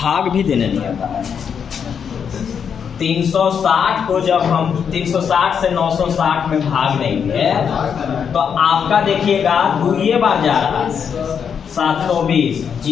भी देने नहीं आता है। 360 को जब हम 360 से 960 में भाग देंगे तो आपका देखिएगा 2 बार जा रहा है, 720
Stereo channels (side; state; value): right; quieter; 7.2 dB